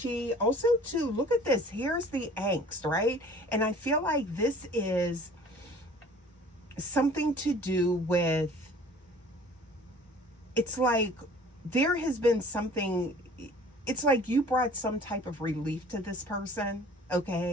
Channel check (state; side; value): normal; both; correlation 0.48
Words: also too, look at this, here's the angst, right? And I feel like this is something to do with, it's like there has been something, it's like you brought some type of relief to this person,